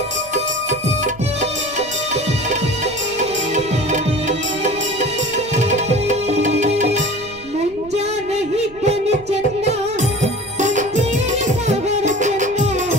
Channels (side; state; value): right; noise; rumble, 21 dB below the sound